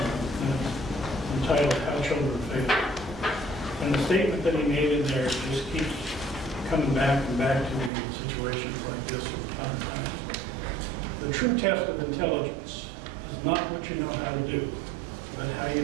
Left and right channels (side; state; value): left; drops out; at 7.9 s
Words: entitled How Children Fail. And the statement that he made in there just keeps coming back and back to me in situations like this from time to time. The true test of intelligence is not what you know how to do, but how